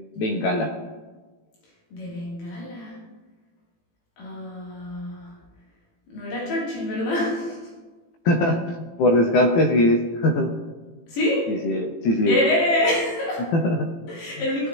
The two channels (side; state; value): right; late; 18 ms